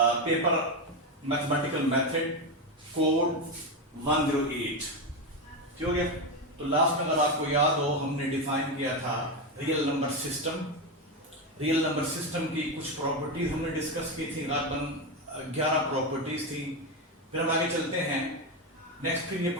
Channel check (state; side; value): normal; both; correlation 0.12